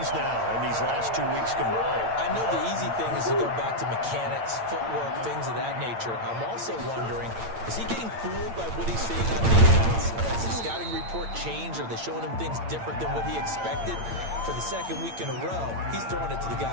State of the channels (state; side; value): late; left; 8.8 ms